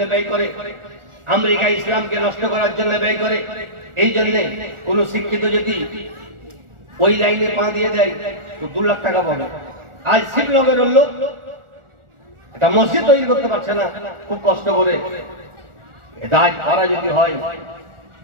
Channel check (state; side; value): late; left; 1.4 ms